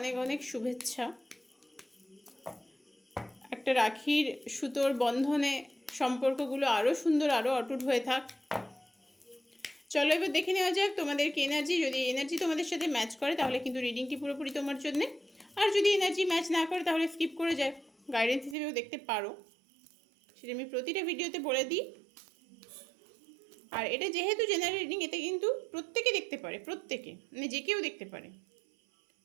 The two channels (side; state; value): left; drops out; at 18.6 s